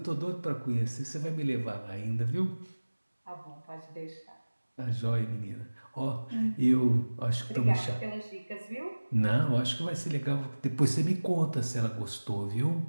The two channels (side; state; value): both; inverted; correlation -1.00